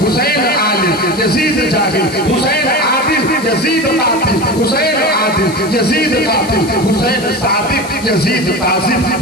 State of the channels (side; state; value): left; noise; hiss, 15 dB below the sound